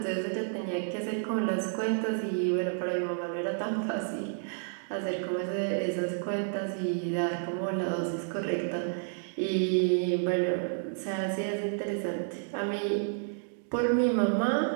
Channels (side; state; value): left; silent; digital silence